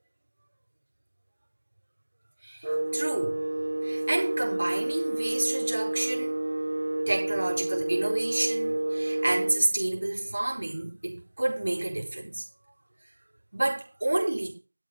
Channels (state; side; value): inverted; both; correlation -1.00